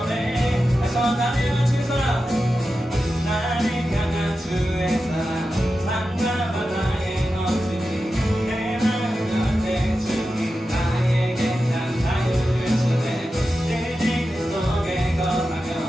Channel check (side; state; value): both; normal; correlation 0.91